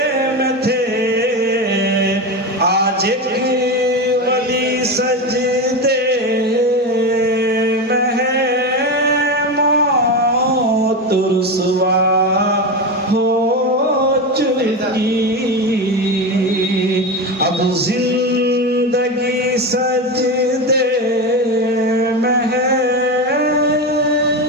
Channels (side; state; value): both; normal; correlation 0.19